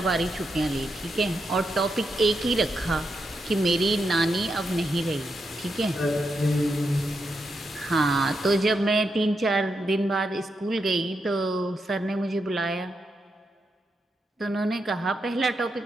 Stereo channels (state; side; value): normal; both; correlation 0.84